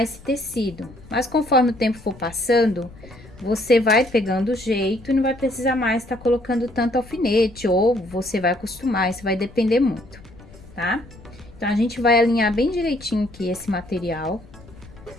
esse tecido. Mas conforme o tempo for passando, você vai pegando o jeito e não vai precisar mais estar colocando tanto alfinete, ou você vai acostumar, isso vai depender muito, tá? Então, a gente vai alinhar bem direitinho aqui esse material.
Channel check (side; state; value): left; noise; rumble, 20 dB below the sound